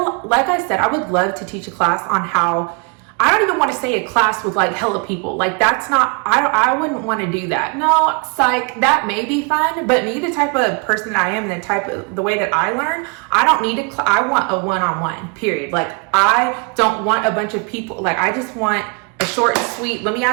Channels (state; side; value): quieter; left; 33.3 dB